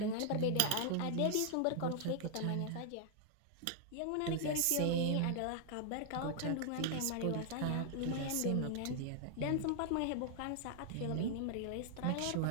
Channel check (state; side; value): different; both; correlation -0.01